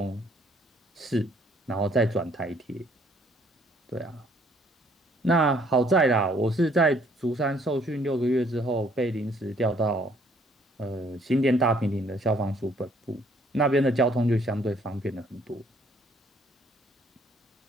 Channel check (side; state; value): both; normal; correlation 0.63